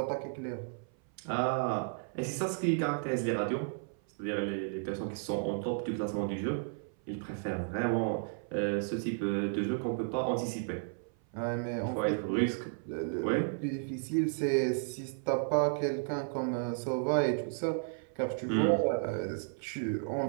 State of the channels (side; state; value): left; silent; 55 dB below the other